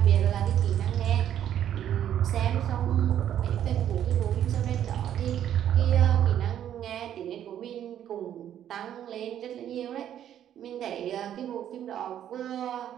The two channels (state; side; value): quieter; left; 10.5 dB